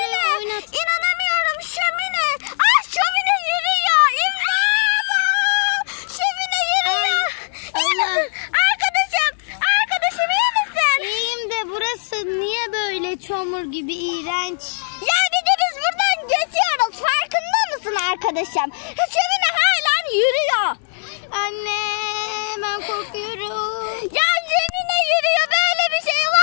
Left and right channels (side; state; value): right; silent; digital silence